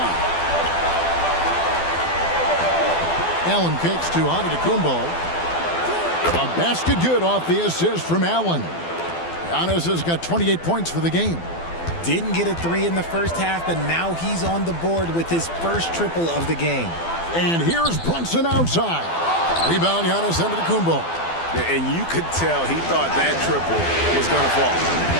Allen kicks to Antetokounmpo. A basket good off the assist from Allen. Giannis has got 28 points for the game. Didn't get a 3 in the first half, but now he's on the board with his first triple of the game. And here's Brunson outside. Rebound, Giannis Antetokounmpo. And you could tell he thought that triple was going to fall.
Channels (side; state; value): right; late; 12 ms